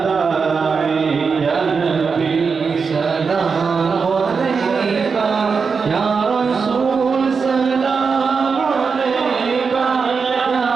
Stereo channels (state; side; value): quieter; left; 5.3 dB